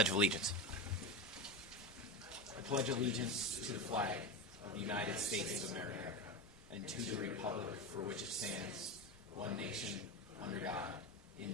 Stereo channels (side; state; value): right; noise; rumble, 27 dB below the sound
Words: of Allegiance. I pledge allegiance to the flag of the United States of America and to the republic for which it stands, one nation, under God,